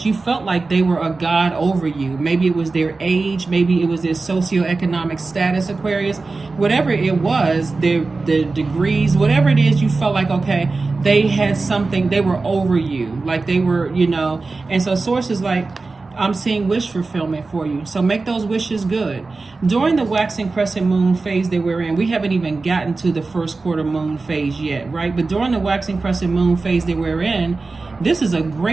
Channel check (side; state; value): left; quieter; 3.8 dB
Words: You felt like they were a god over you. Maybe it was their age. Maybe it was their socioeconomic status, Aquarius. Whatever it was, the degrees, whatever it is, you felt like, okay, they had something. They were over you. Like they were, And so Source is like, I'm seeing wish fulfillment for you. So make those wishes good. During the waxing crescent moon phase that we're in, we haven't even gotten to the first quarter moon phase yet, right? But during the waxing crescent moon phase that we're in, this is a